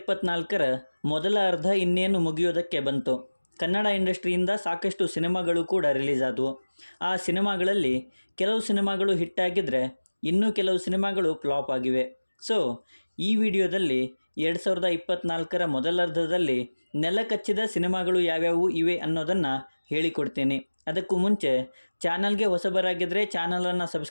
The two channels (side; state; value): both; inverted; correlation -1.00